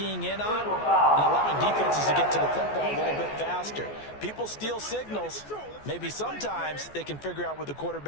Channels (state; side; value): late; right; 14 ms